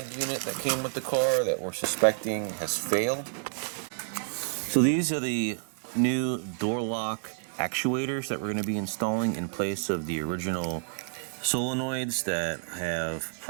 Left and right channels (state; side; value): silent; left; digital silence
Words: unit that came with the car that we're suspecting has failed. So these are the new door lock actuators that we're going to be installing in place of the original solenoids that have